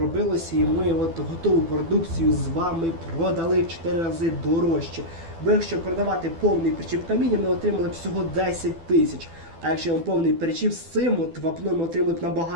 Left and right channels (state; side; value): late; left; 12 ms